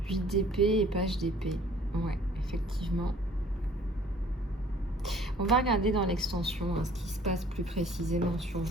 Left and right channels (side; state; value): both; normal; correlation 0.54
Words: 8 d'épée et page d'épée. Ouais, effectivement. On va regarder dans l'extension ce qui se passe plus précisément sur